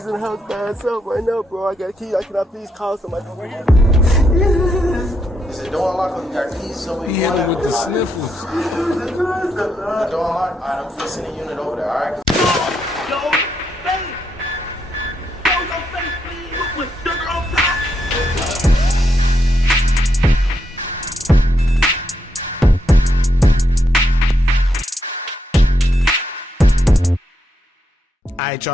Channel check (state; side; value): normal; both; correlation 0.79